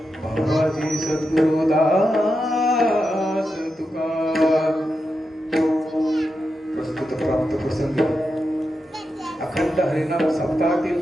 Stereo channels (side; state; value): both; normal; correlation 0.88